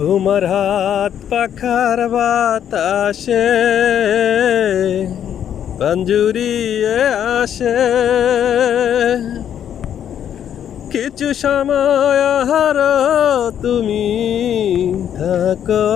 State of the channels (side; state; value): right; quieter; 9.5 dB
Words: হাত পাখার বাতাসে পাঞ্জুরিয়ে আসে, কিছু সময় আহারো তুমি থাকো